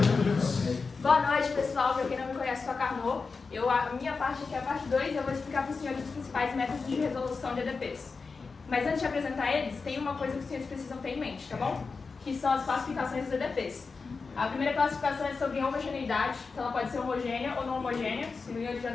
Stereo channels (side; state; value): right; quieter; 4.6 dB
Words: Boa noite, pessoal. Para quem não me conhece, sou a Carmo. A minha parte aqui é a parte 2 e eu vou explicar para os senhores os principais métodos de resolução de EDPs. Mas antes de apresentar eles, tem uma coisa que os senhores precisam ter em mente, tá bom? Que são as classificações dos EDPs. A primeira classificação é sobre homogeneidade, que ela pode ser homogênea ou não homogênea. Os senhores já